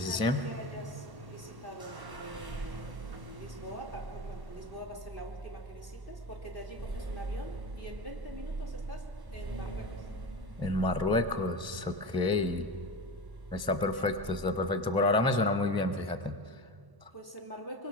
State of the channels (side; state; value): left; late; 1.1 ms